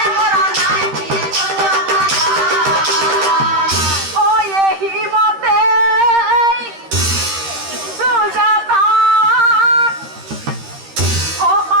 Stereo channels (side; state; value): left; late; 13 ms